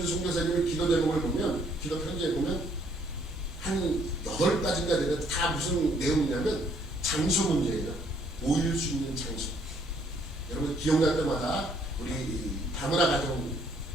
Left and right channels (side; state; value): both; normal; correlation 0.66